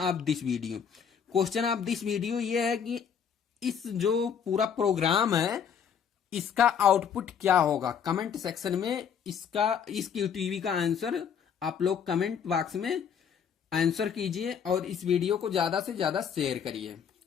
this video. Question of this video ये है कि इस जो पूरा प्रोग्राम है इसका आउटपुट क्या होगा। कमेंट सेक्शन में इस QTV का आंसर आप लोग कमेंट बॉक्स में आंसर कीजिए और इस वीडियो को ज्यादा से ज्यादा शेयर करिए।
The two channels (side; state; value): right; quieter; 7.5 dB